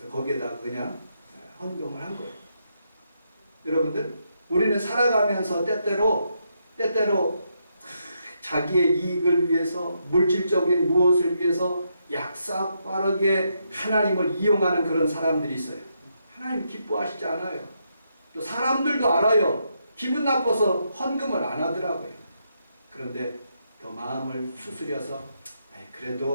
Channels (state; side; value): inverted; both; correlation -0.79